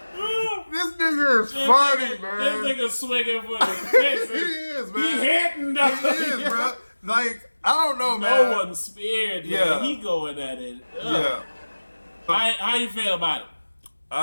This nigga is funny, man. This nigga swinging for the fences. He is, man. He hitting them. He is, bro. Like, I don't know, man. No one's spared, man. Yeah. He going at it. Yeah. How you feel about it?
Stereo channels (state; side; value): inverted; both; correlation -1.00